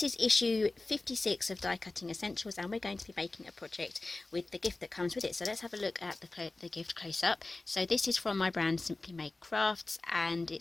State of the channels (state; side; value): quieter; right; 3.2 dB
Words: is issue 56 of Die Cutting Essentials and we're going to be making a project with the gift that comes with it. So let's have a look at the gift close up. So this is from my brand Simply Made Crafts and